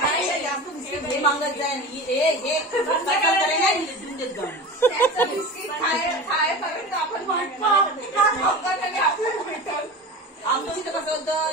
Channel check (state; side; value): normal; both; correlation 0.32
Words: मागत जाईल बिस्किट खायपर्यंत आपण आमच्या इथं कसं